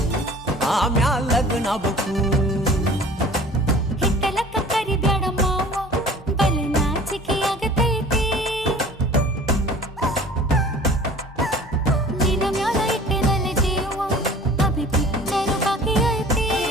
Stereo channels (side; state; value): both; normal; correlation 0.46